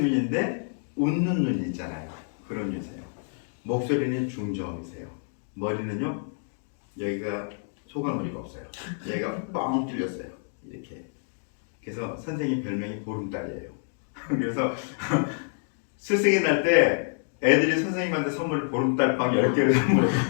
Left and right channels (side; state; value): right; silent; 60 dB below the other